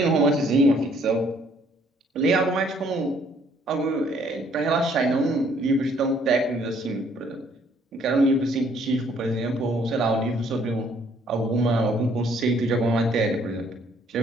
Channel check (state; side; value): normal; both; correlation 0.64